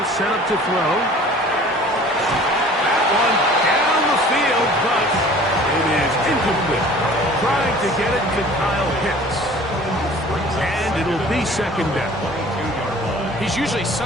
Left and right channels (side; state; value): both; normal; correlation 0.47